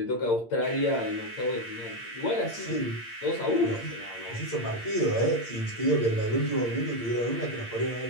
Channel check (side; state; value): right; late; 8.7 ms